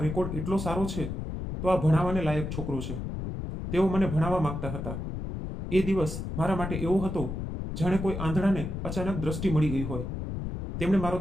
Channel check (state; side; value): noise; left; rumble, 5 dB below the sound